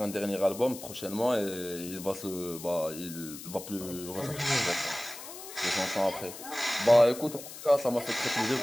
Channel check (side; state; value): left; noise; hiss, 13 dB below the sound